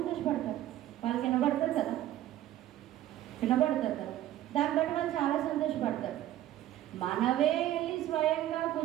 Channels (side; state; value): left; quieter; 13.2 dB